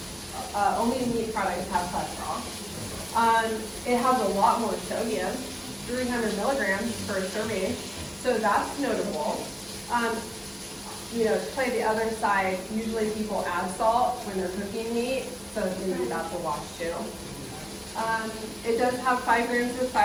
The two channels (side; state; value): both; identical; correlation 1.00